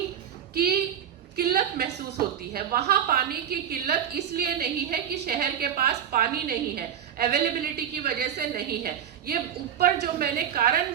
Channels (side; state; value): left; quieter; 9.1 dB